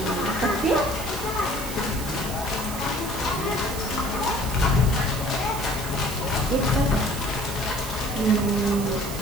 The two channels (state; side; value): noise; right; hiss, 10 dB below the sound